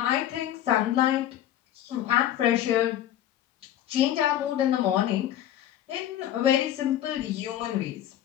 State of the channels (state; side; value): quieter; right; 11.8 dB